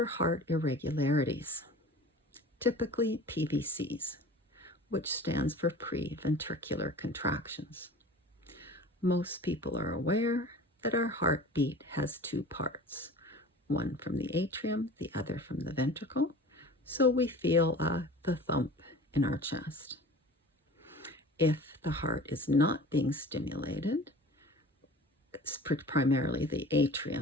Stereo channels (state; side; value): normal; both; correlation 0.41